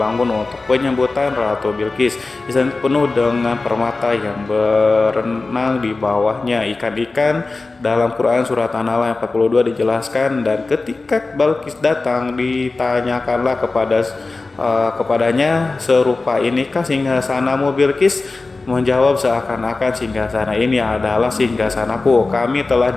untuk penyambutan Ratu Bilqis. Istana penuh dengan permata yang berenang di bawahnya, ikan-ikan. Dalam Quran surat An-Nahl ayat 42 dijelaskan, dan ketika Bilqis datang ditanyakanlah kepadanya, serupa inikah singgasanamu Bilqis? Menjawab seakan-akan singgasana ini adalah singgasanaku. Kami telah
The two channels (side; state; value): right; quieter; 3.6 dB